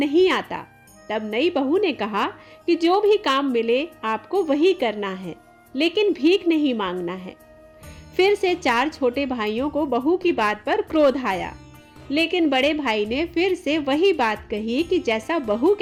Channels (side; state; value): both; identical; correlation 1.00